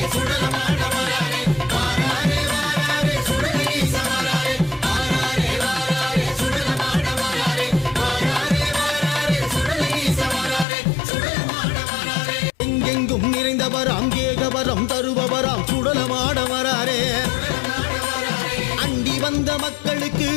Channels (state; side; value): drops out; right; at 10.7 s